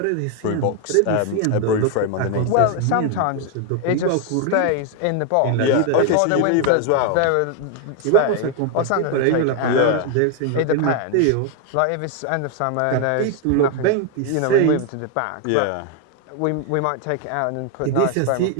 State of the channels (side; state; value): both; different; correlation 0.01